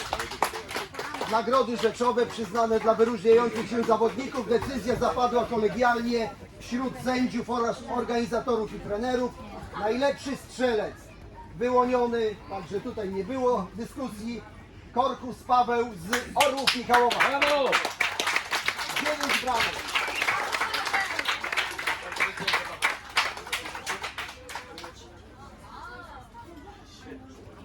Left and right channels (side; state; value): both; identical; correlation 1.00